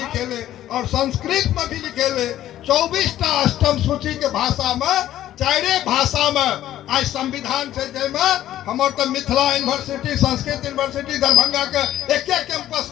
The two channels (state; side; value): quieter; right; 12.9 dB